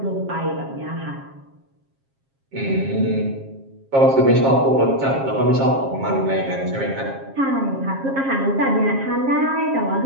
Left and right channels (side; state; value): left; late; 7.4 ms